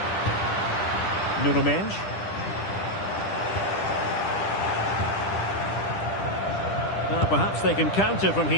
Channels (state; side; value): late; right; 10 ms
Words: Nuno Mensch. Now perhaps they can counter from